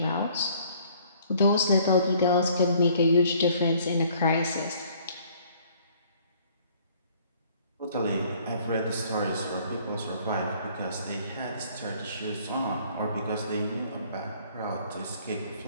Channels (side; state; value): both; inverted; correlation -0.59